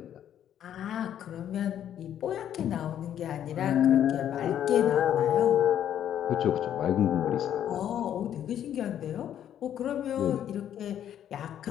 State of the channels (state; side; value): quieter; right; 10.3 dB